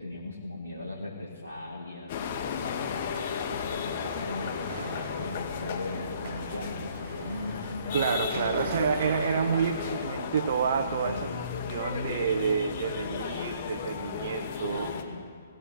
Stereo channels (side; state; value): both; inverted; correlation -0.61